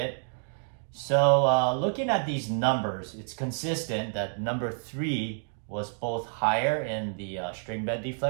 So looking at these numbers, it's consistent that number 3 was both higher in the string bed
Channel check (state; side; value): silent; left; digital silence